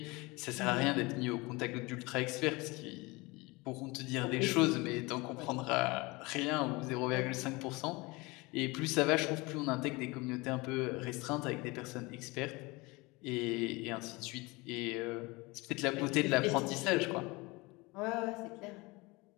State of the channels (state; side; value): quieter; right; 24.3 dB